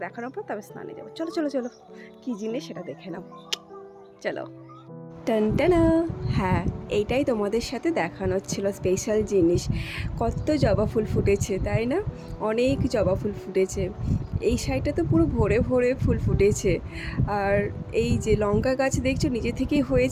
দেখানোর পর তবে স্নানে যাবো। চলো চলো চলো, কী জিনিস সেটা দেখে নাও, চলো। টানটানা, হ্যাঁ, এইটাই তোমাদের সাথে দেখানোর ছিল স্পেশাল জিনিস। কত জবা ফুল ফুটেছে, তাই না? অনেক জবা ফুল ফুটেছে। এই সাইডটা তো পুরো ভরে ভরে ফুল ফুটেছে। আর এই যে লঙ্কা গাছ দেখছো নিজে থেকেই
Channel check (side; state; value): both; identical; correlation 1.00